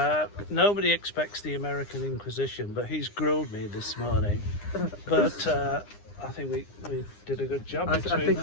Nobody expects the American Inquisition, but he's grilled me this morning. But I think we did a good job. I think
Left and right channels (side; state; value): right; late; 9.8 ms